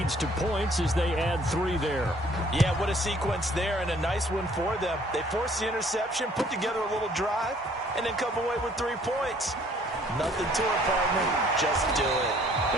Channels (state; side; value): normal; both; correlation 0.59